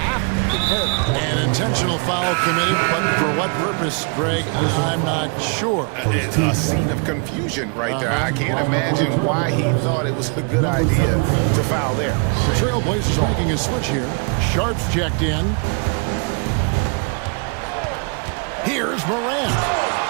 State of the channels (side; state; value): left; quieter; 36.3 dB